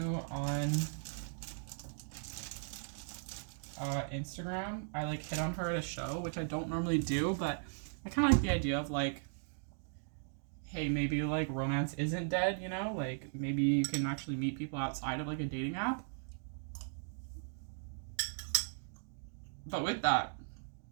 on Instagram. I like hit on her at a show, which I don't normally do, but I kind of like the idea of like, hey, maybe like romance isn't dead, you know? Like maybe you can actually meet people outside of like a dating app. But with that,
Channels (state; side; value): silent; left; digital silence